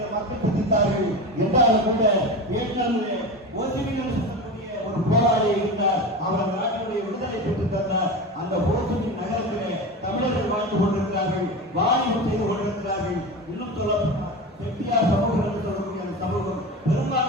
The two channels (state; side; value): normal; both; correlation 0.26